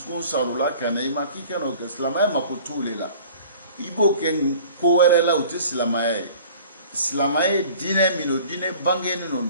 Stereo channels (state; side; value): inverted; both; correlation -0.47